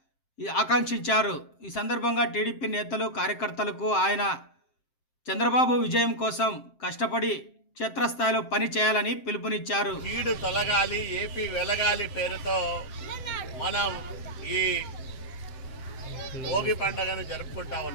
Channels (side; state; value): right; late; 7.6 ms